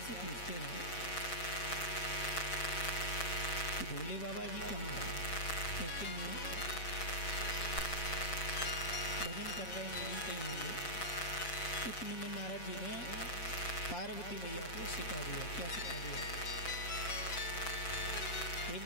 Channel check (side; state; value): right; late; 6.2 ms